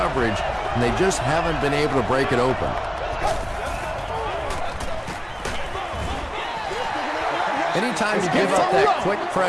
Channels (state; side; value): identical; both; correlation 1.00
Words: and they just haven't been able to break it open. Anytime you give up that quick